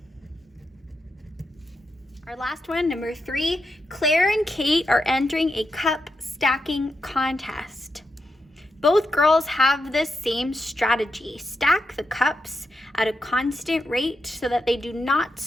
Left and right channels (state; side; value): normal; both; correlation 0.85